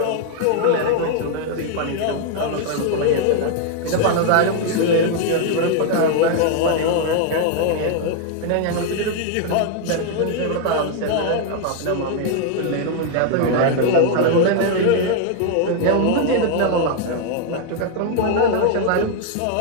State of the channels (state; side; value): different; both; correlation 0.00